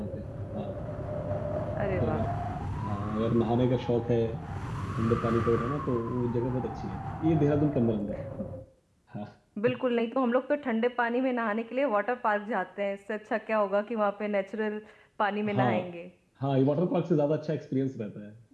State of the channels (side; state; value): both; identical; correlation 1.00